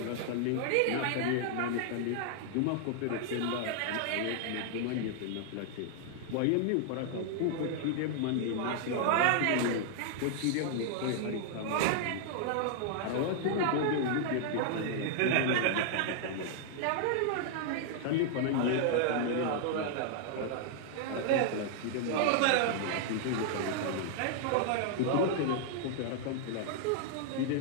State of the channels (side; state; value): both; different; correlation -0.01